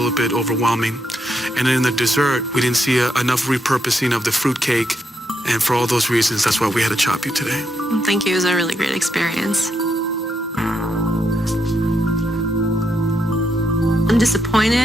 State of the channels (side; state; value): both; normal; correlation 0.80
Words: bit overwhelming. And then in the dessert, we didn't see enough repurposing of the fruit cake. And for all those reasons, that's why we had to chop you today. Thank you. It was a really great experience. I'm